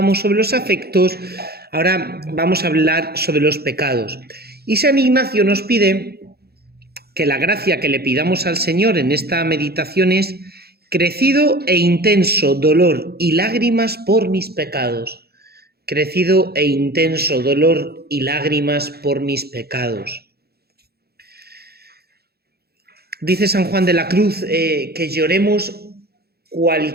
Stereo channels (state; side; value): late; left; 0.46 ms